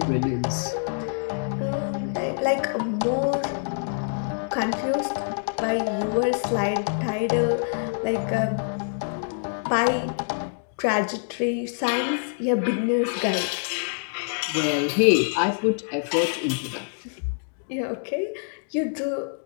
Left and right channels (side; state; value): right; silent; digital silence